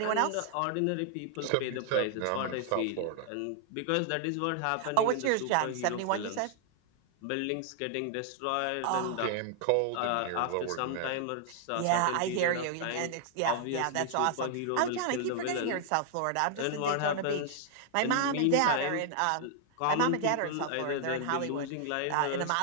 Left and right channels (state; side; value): different; both; correlation 0.00